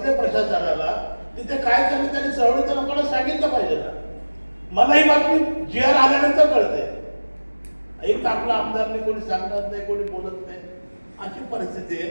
प्रशासनाला, तिथे काय चाललं त्यांनी चळवळीच्या लोकांना सांगितलं पाहिजे ना. मला ही बातमी GR आल्यानंतर कळते. एक आपला आमदारने कोणी सांगणार नाही, कोणी बोलत नाही, अशी परिस्थिती आहे.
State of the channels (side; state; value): both; inverted; correlation -1.00